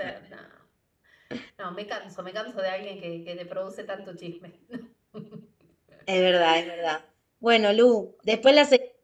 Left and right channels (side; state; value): both; identical; correlation 1.00